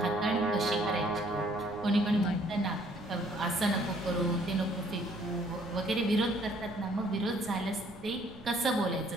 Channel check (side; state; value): right; noise; rumble, 20 dB below the sound